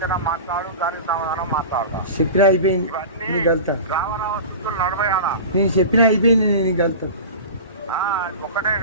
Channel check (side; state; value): both; inverted; correlation -0.32